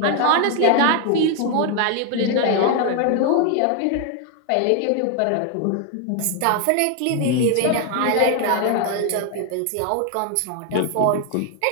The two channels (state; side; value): different; both; correlation 0.01